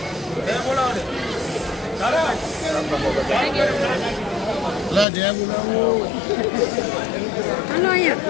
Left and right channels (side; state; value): right; drops out; at 5.1 s